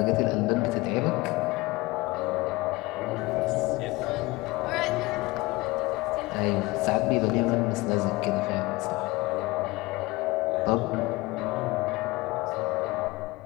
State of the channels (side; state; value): right; quieter; 21.9 dB